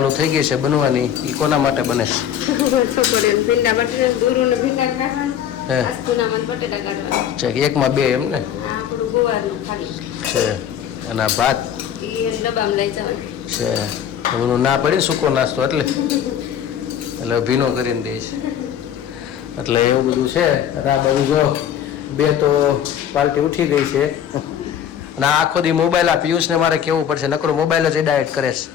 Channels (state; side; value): quieter; right; 9.4 dB